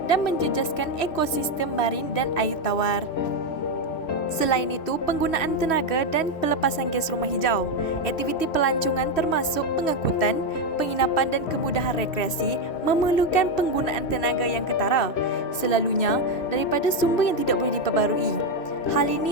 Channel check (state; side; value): late; right; 3.1 ms